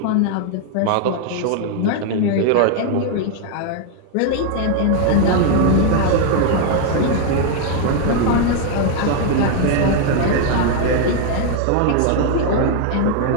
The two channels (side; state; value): both; different; correlation 0.00